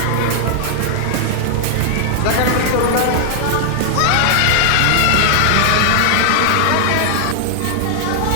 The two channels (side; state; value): both; different; correlation -0.01